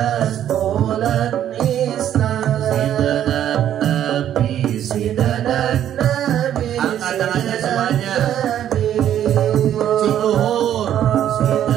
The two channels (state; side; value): quieter; left; 10.8 dB